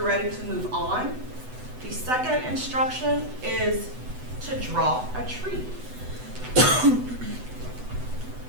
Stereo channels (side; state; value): left; late; 8.0 ms